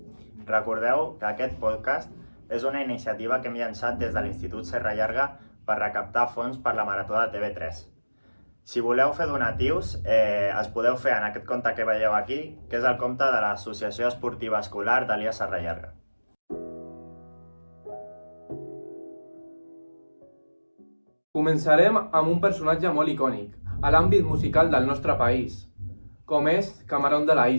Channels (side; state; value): both; inverted; correlation -1.00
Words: Recordeu que aquest podcast és una iniciativa que hem llançat des de l'Institut Serra Llarga per recaptar fons per la Marató de TV3. Si voleu fer donatius, els podeu fer en aquest compte que veieu aquí, que és el compte de l'Associació Esportiva Escolar d'Elias Serra Llarga. Començarem amb un personatge molt icònic, a l'àmbit musical del nostre país, com és Camarón de la